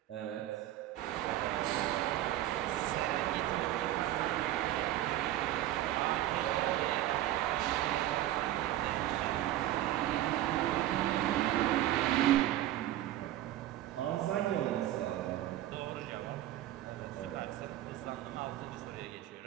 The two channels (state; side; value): quieter; left; 13.8 dB